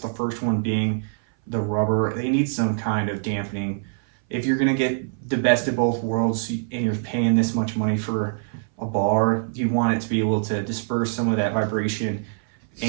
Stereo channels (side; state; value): left; silent; 59 dB below the other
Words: first one being the rubber. They need some kind of dampening. If you're gonna get the best of both worlds and you're paying this much money for a bar, you want it to be able to disperse some of that vibration